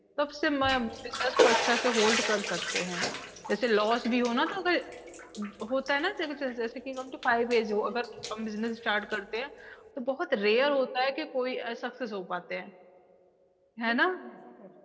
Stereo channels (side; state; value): both; identical; correlation 1.00